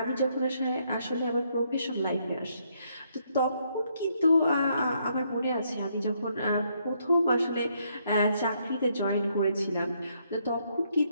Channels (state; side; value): inverted; both; correlation -0.73